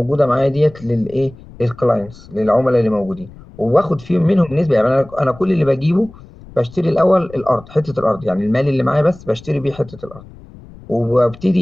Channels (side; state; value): left; noise; rumble, 20 dB below the sound